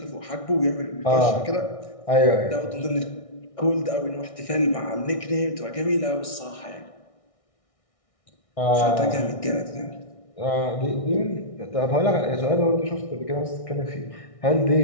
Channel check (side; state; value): right; late; 1.6 ms